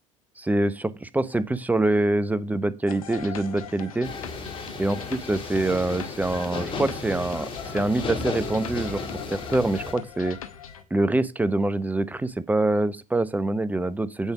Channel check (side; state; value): both; normal; correlation 0.88